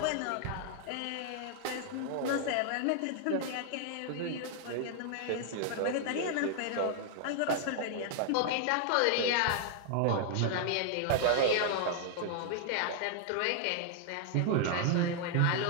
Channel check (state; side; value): different; both; correlation 0.00